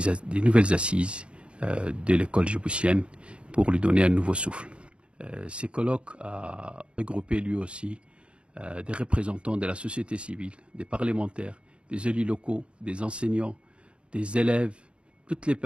nouvelles assises de l'école djiboutienne pour lui donner un nouveau souffle. Ces colloques a regroupé lui aussi des représentants de la société civile, des parlementaires, des élus locaux, des enseignants, des élèves, toutes les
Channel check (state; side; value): late; left; 0.058 ms